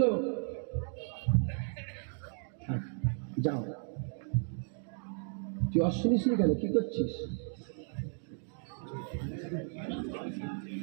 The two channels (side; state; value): left; silent; 55 dB below the other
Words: যাও। তুই শুনিস নি কেন? কি করছিস?